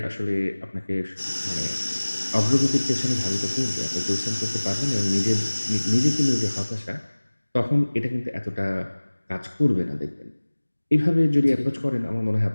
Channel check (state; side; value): inverted; both; correlation -1.00